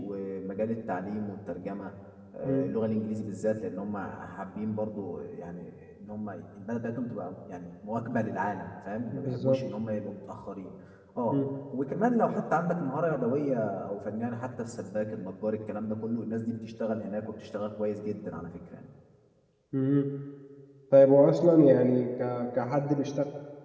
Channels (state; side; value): identical; both; correlation 1.00